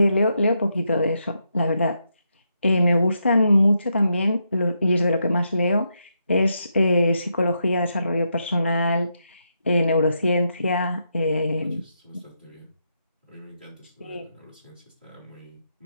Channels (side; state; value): both; inverted; correlation -0.82